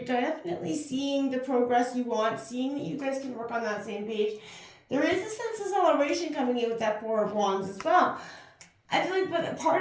definitely seeing the progress you want, seeing that you guys can work on that same page. There is a sense of celebration coming in with that Four of Wands as well. I feel like, but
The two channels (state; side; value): identical; both; correlation 1.00